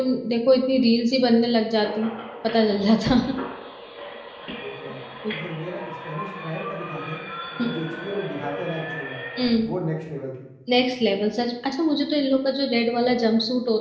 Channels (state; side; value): identical; both; correlation 1.00